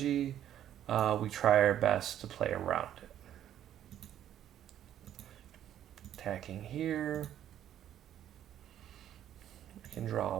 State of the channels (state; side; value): quieter; left; 11.0 dB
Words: we try our best to play around it. Attacking here. I can